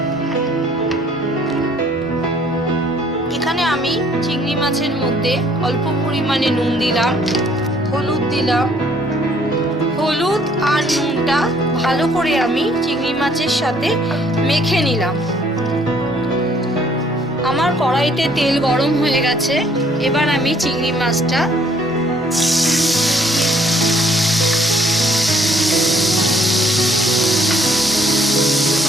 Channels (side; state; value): both; normal; correlation 0.62